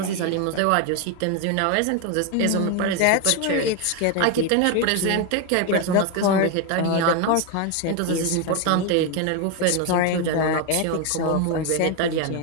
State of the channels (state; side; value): different; both; correlation 0.01